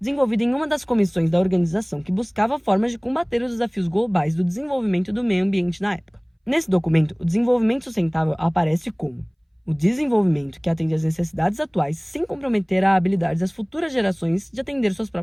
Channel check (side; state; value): both; identical; correlation 1.00